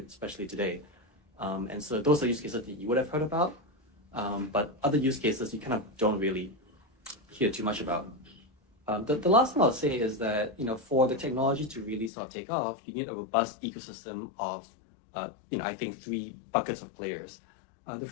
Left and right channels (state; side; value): drops out; right; at 12.1 s